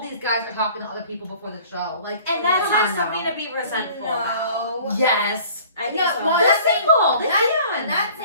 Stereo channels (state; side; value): inverted; both; correlation -0.50